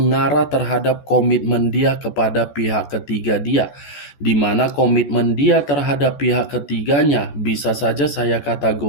terhadap komitmen dia kepada pihak ketiga dia, di mana komitmen dia terhadap pihak ketiganya bisa saja saya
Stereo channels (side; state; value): right; late; 14 ms